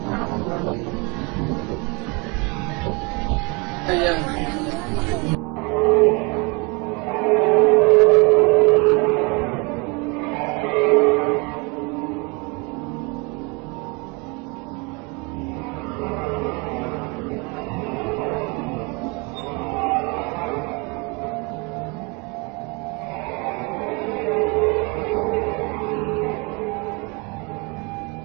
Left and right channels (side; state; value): left; quieter; 29.5 dB